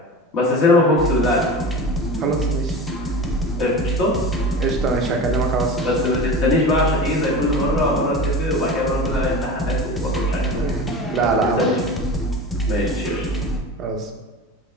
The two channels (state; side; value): normal; both; correlation 0.31